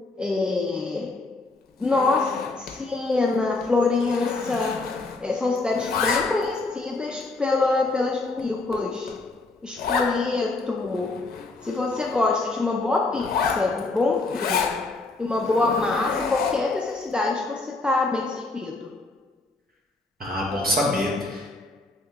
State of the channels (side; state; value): right; quieter; 3.2 dB